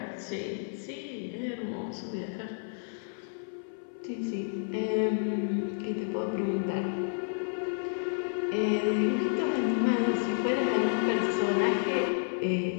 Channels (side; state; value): right; silent; 57 dB below the other